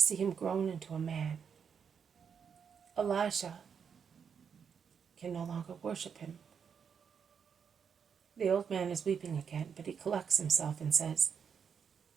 him grown into a man. Elisha can no longer worship him. The old man is weeping again, but he collects himself and says,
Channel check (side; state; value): left; quieter; 7.0 dB